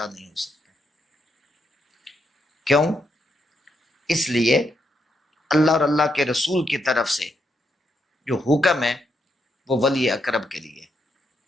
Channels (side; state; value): both; normal; correlation 0.79